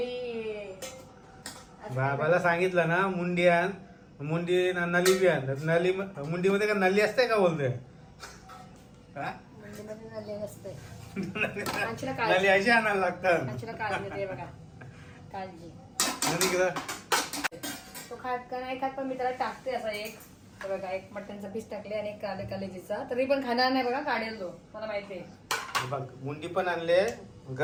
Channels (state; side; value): identical; both; correlation 1.00